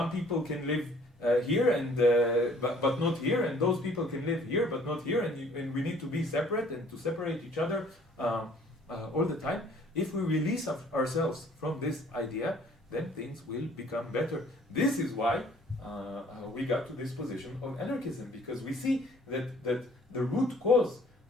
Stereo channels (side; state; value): both; normal; correlation 0.56